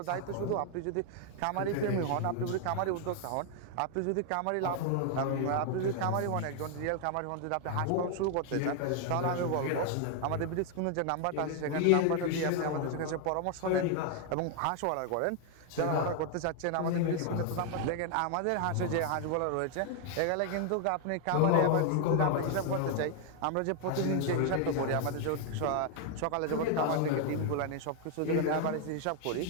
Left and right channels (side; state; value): both; different; correlation 0.00